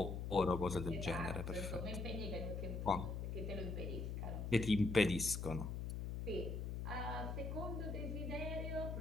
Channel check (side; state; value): left; noise; hum, 3 dB below the sound